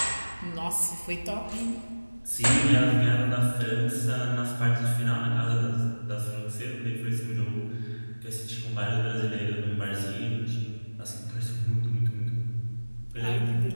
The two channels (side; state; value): both; inverted; correlation -1.00